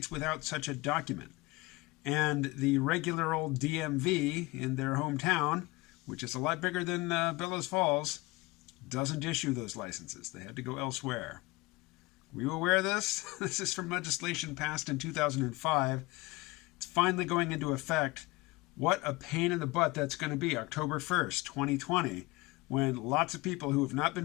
without such a document. And the regular old DMV in their hometown, which is a lot bigger than Bellows Falls, doesn't issue those licenses. They had to go elsewhere. Were you aware of this? This is from legislation passed in 2005. It's finally going into effect. What a pain in the butt that's going to be, October 1st, 2020, when lots of people who have not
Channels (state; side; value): quieter; right; 22.4 dB